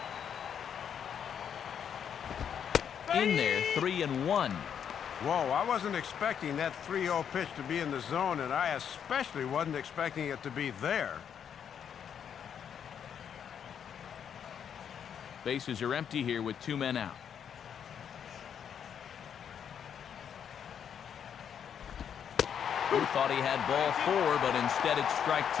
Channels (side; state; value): right; quieter; 8.2 dB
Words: In there, 3-1. Whoa, I wasn't expecting that 3-0 pitch to be in the zone, and I especially wasn't expecting it to be there. Bases are empty here with 2 men out. Who thought he had ball 4, but instead it's strike